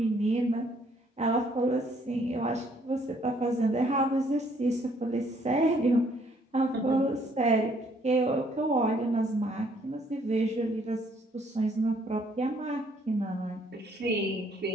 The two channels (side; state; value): both; normal; correlation 0.65